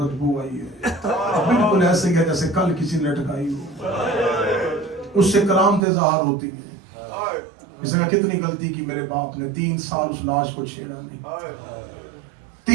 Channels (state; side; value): drops out; left; at 5.9 s